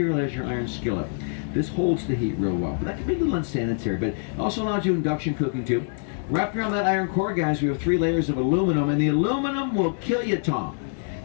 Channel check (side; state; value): right; silent; 62 dB below the other